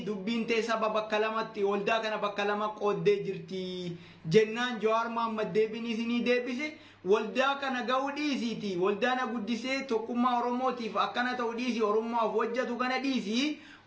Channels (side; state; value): both; identical; correlation 1.00